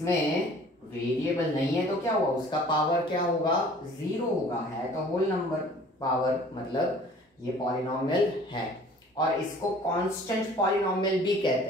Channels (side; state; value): both; normal; correlation 0.50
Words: वेरिएबल नहीं है तो क्या हुआ, उसका पावर क्या होगा, 0 होगा, है तो होल नंबर पावर, मतलब ये पॉलिनॉमियल है। और इसको कांस्टेंट पॉलिनॉमियल भी कहते